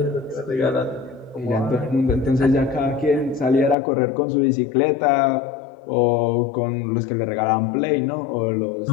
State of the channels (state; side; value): drops out; right; at 3.8 s